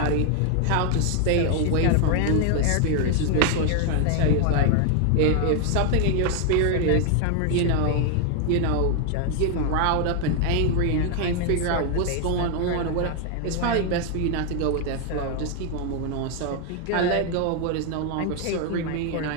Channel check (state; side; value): different; both; correlation 0.00